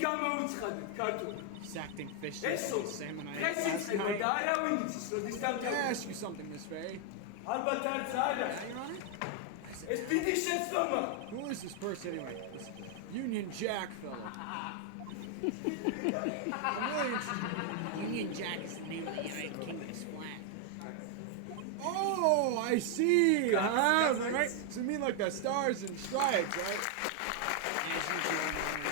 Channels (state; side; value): different; both; correlation 0.00